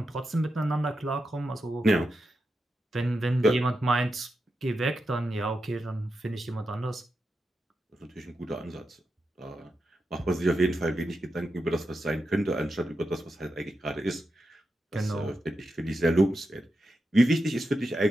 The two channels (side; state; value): both; normal; correlation 0.88